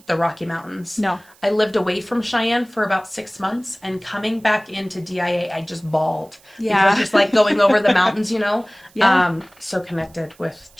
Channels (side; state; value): right; noise; hiss, 29 dB below the sound